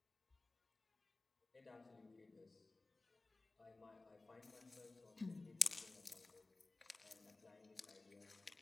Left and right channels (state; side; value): quieter; right; 3.3 dB